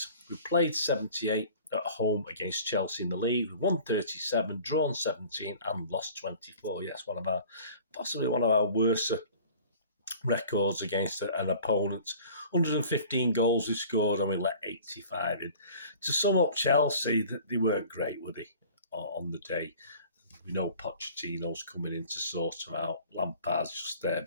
we played 78 at home against Chelsea in the league, we won 37, drawn 17 and lost 24. Yes, possibly one of our worst records against an opponent. 115 goals we scored and we let 85 in. To sum up Chelsea, they weren't great, were they, on the day? We know Pochettino's coming in to sort them out. Lampard's just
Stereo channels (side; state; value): both; inverted; correlation -0.47